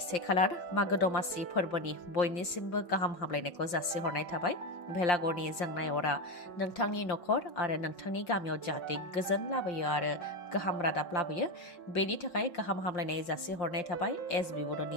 1 खालार मागो दमासि फोरबोनि बयनिसिमबो गाहाम हामलायनायखौ जासिहरनाय थाबाय भेलागरनि जोंनाय अरा नोंथांनि नखर आरो नोंथांनि गामियाव जाहाथे गोजोन लाबोयो आरो गाहाम रादाब लाबोयो बेनि थाखाय गाहाम हामलायनाय जासिहरनाय थाबाय एसबि बड'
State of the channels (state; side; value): late; right; 5.7 ms